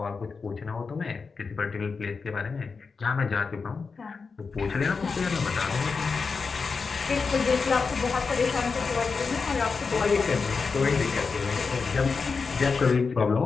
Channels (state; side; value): quieter; right; 4.9 dB